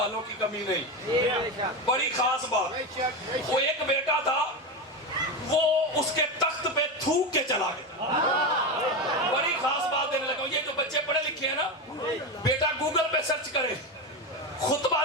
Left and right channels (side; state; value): both; normal; correlation 0.17